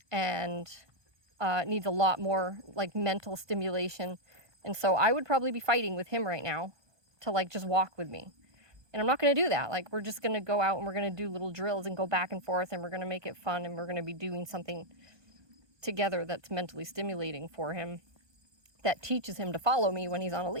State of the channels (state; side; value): late; left; 1.2 ms